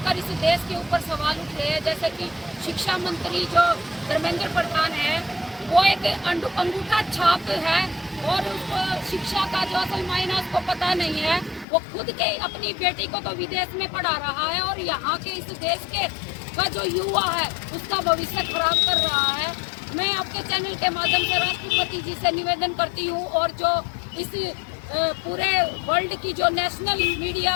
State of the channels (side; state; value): right; drops out; at 11.7 s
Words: इस देश के ऊपर सवाल उठ रहे हैं, जैसे कि शिक्षा मंत्री जो धर्मेंद्र प्रधान है, वो एक अंगूठा छाप है और उसको शिक्षा का जो असल मायना उसको पता नहीं है। वो खुद के अपनी बेटी को तो विदेश में पढ़ा रहा है और यहाँ के इस देश के का जो युवा है उसका भविष्य खराब कर रहा है। मैं आपके चैनल के माध्यम से राष्ट्रपति जी से निवेदन करती हूँ, और जो इस पूरे वर्ल्ड की जो नेशनल मीडिया